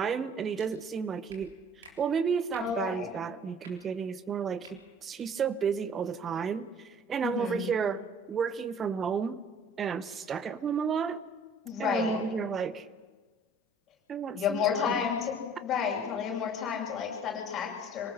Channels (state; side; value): normal; both; correlation 0.53